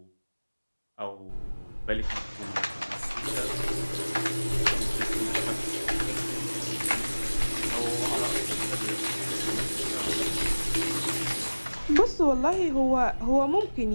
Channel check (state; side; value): inverted; both; correlation -1.00